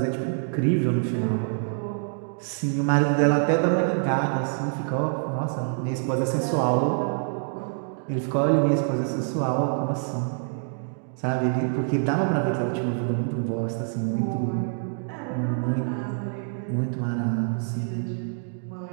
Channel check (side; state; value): left; silent; digital silence